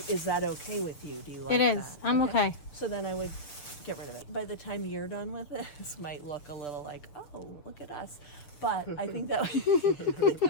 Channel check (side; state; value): right; late; 6.9 ms